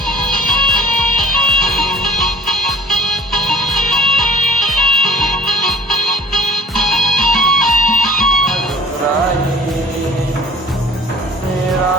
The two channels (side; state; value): both; normal; correlation 0.49